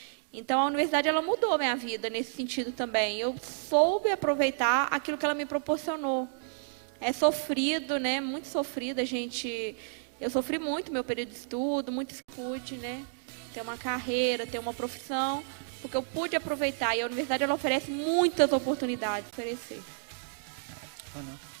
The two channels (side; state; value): left; silent; digital silence